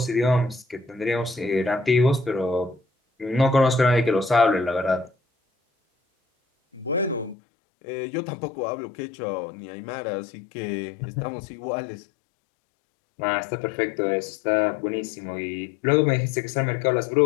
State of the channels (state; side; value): drops out; right; at 7.4 s